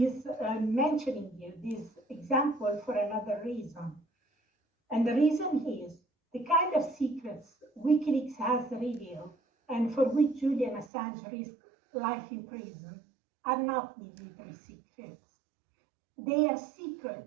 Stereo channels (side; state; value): left; drops out; at 10.9 s